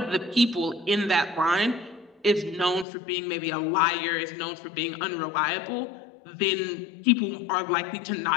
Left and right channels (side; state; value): right; drops out; at 2.9 s